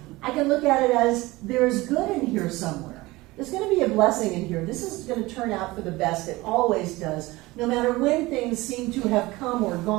I can look at it as there's good in here somewhere. There's going to be a blessing in here. This is going to turn out for the best. It always does. No matter when things seem to have come or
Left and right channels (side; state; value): left; quieter; 20.5 dB